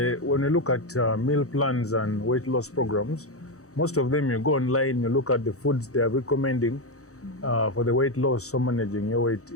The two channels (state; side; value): late; right; 0.65 ms